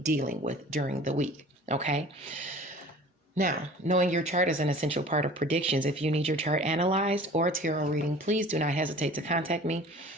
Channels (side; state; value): both; normal; correlation 0.45